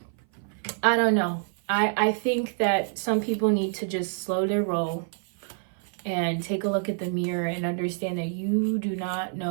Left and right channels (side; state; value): left; silent; 57 dB below the other